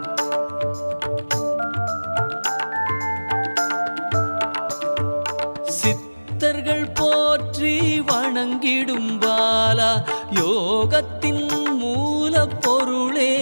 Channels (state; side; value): inverted; both; correlation -1.00